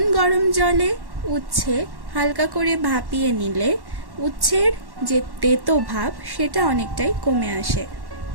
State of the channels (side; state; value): left; late; 1.1 ms